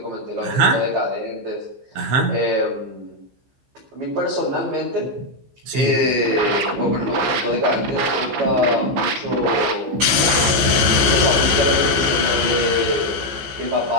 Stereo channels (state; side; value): late; left; 15 ms